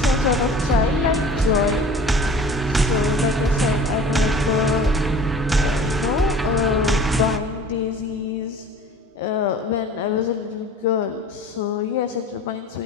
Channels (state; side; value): normal; both; correlation 0.44